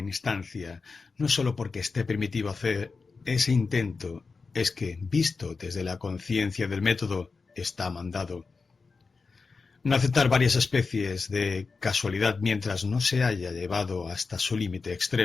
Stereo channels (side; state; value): right; quieter; 4.5 dB